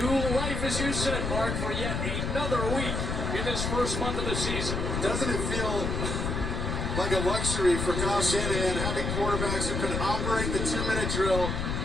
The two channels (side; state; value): left; noise; rumble, 1 dB below the sound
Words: life, as you said, Mark, for yet another week in this first month of the season. Doesn't it feel like a luxury for Kyle Shanahan having quarterbacks who can operate the 2-minute drill